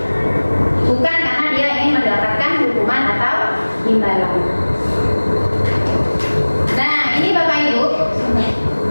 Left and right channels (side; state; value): both; inverted; correlation -1.00